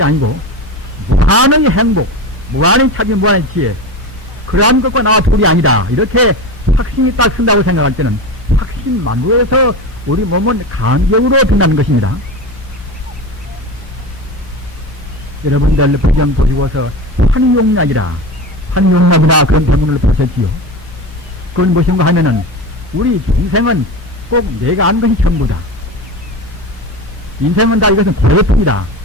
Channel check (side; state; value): both; normal; correlation 0.25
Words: 아니고 무한의 행복, 무한의 차비, 무한의 지혜 그러한 것과 나와 둘이 아니다. 이렇게 확신이 딱 쓴다고 생각할 때는 확신만으로해서 우리 몸은 간격으로 든다는 것입니다. 여러분들 배경 보시고서 환용약이나 그런 병문을 보셨지요. 그건 무엇인가 하면은 우리 인생은 꼭 내가 아는 것이 전부다. 인생은 다 이것은 고래품이다.